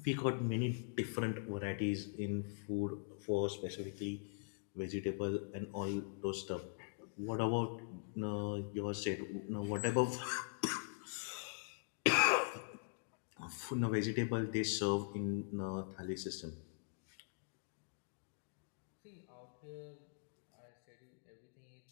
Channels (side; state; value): right; silent; digital silence